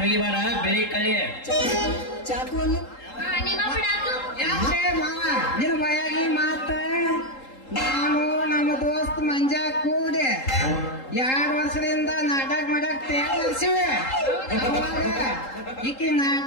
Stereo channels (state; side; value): late; right; 3.8 ms